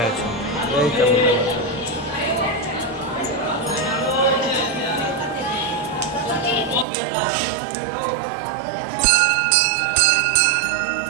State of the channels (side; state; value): left; drops out; at 6.9 s